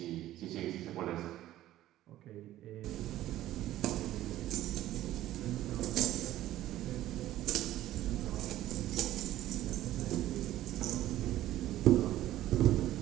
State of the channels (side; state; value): left; quieter; 14.1 dB